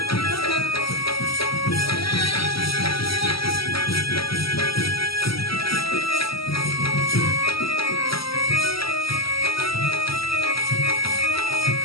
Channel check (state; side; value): late; right; 0.75 ms